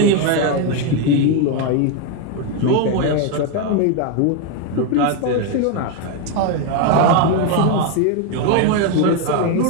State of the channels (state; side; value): different; both; correlation 0.01